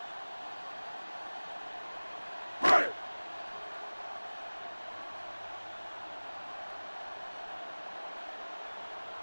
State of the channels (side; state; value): both; inverted; correlation -1.00